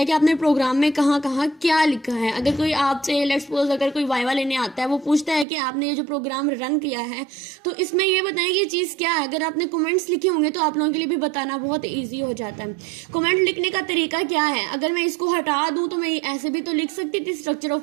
कि आपने प्रोग्राम में कहाँ कहाँ क्या लिखा है। अगर कोई आपसे लेट्स सपोज अगर कोई वाइवा लेने आता है, वो पूछता है कि आपने ये जो प्रोग्राम रन किया है तो इसमें ये बताएं कि ये चीज़ क्या है। अगर आपने कमेंट्स लिखे होंगे तो आप लोगों के लिए भी बताना बहुत ईजी हो जाता है। कमेंट लिखने का तरीका क्या है, अगर मैं इसको हटा दूँ तो मैं ऐसे भी तो लिख सकती थी स्ट्रक्चर ऑफ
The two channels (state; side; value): drops out; left; at 5.5 s